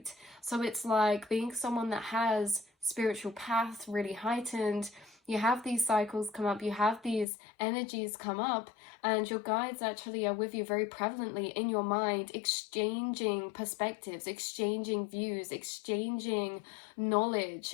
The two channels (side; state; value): right; drops out; at 7.2 s